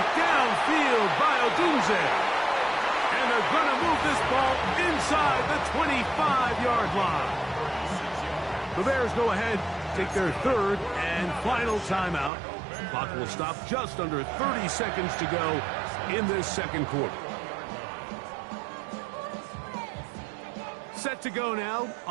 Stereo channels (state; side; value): drops out; left; at 12.3 s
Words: downfield by Odunze. And they're going to move this ball inside the 25-yard line. The Bears go ahead, take their 3rd and final timeout. Clock will stop just under 30 seconds to go in this 2nd quarter. Set to go now